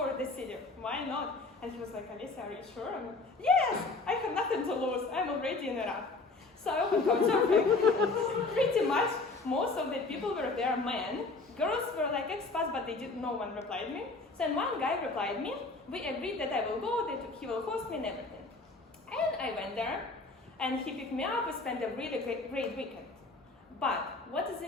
the city. Why not? And he was like, Olesia, are you sure? I'm like, yes, I have nothing to lose. I'm already in Iraq. So I opened couchsurfing. Pretty much, most of the people were there men. Girls were like expats, but no one replied me. So then one guy replied me. We agreed that I will go, that he will host me and everything. And I went there, and he picked me up. We spent a really great weekend. But what is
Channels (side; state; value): right; quieter; 3.5 dB